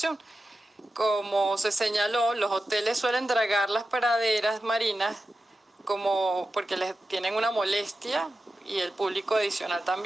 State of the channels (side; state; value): both; normal; correlation 0.92